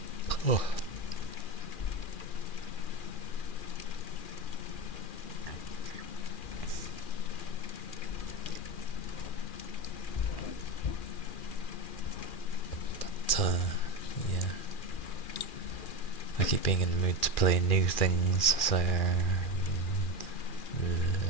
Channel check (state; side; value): late; right; 2.4 ms